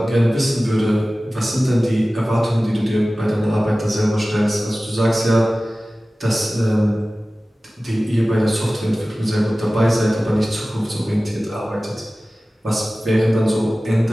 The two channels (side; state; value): both; normal; correlation 0.97